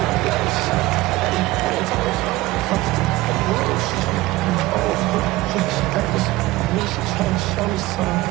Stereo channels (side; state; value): left; quieter; 18.7 dB